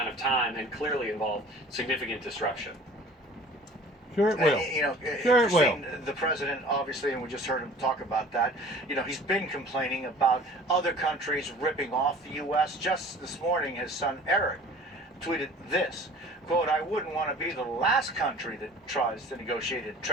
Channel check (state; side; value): normal; both; correlation 0.46